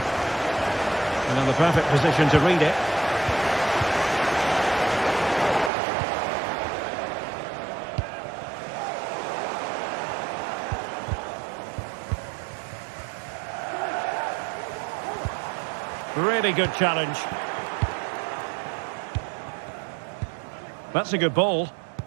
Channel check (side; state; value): left; drops out; at 5.7 s